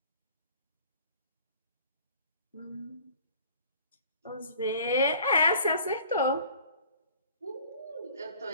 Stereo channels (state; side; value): inverted; both; correlation -0.50